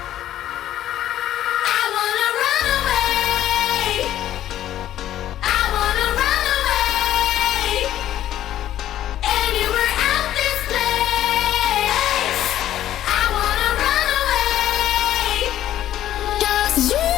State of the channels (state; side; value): quieter; right; 12.4 dB